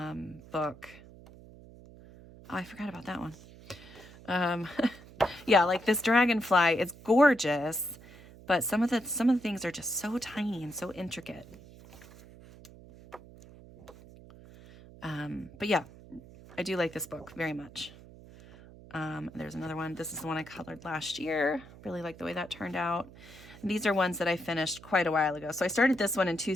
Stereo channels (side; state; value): right; noise; hum, 19 dB below the sound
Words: Oh, I forgot about that one. Yeah, like this dragonfly, it's gorgeous, but some of the things are just so tiny and so intricate. But yeah, I do like this book very much. There's another one. This is the one I colored last year. Really like the way that turned out. And these are ones that I finished quite a while ago. So I started this one in